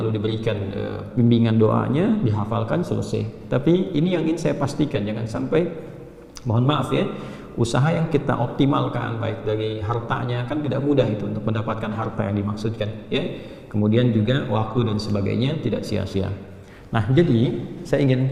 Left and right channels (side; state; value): both; identical; correlation 1.00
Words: diberikan bimbingan doanya, dihafalkan, selesai. Tapi ini yang ingin saya pastikan, jangan sampai, mohon maaf ya, usaha yang kita optimalkan baik dari hartanya, kan tidak mudah itu untuk mendapatkan harta yang dimaksudkan, ya. Kemudian juga waktu dan sebagainya tidak sia-sia. Nah, jadi saya